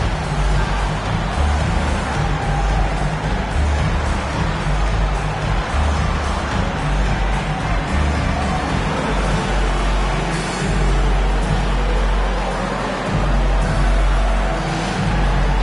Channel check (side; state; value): both; identical; correlation 1.00